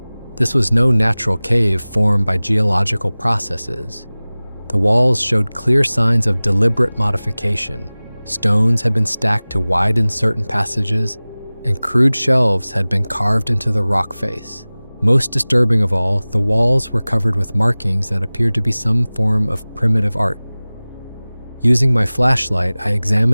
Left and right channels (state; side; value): inverted; both; correlation -0.99